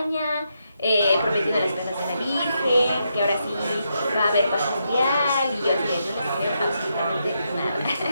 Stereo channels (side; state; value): both; inverted; correlation -0.82